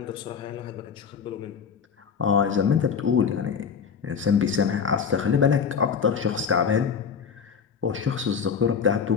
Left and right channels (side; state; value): right; quieter; 6.5 dB